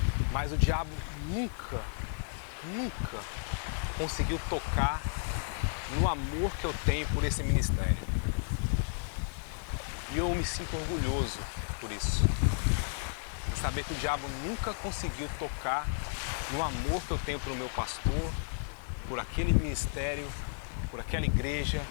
Mas o diabo nunca conseguiu tocar no amor que eu tenho por esse ministério. E eu me sinto orgulhoso por isso. Em saber que o diabo nunca conseguiu tocar no amor que eu tenho pelo meu pastor, por aquele ministério, por aquela igreja,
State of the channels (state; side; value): silent; right; digital silence